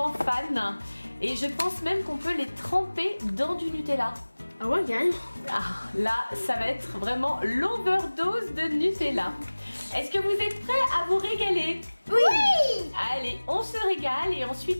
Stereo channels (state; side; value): inverted; both; correlation -1.00